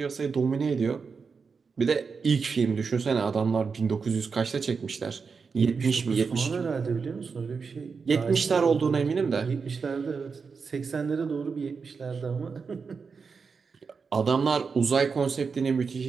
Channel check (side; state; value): left; quieter; 5.3 dB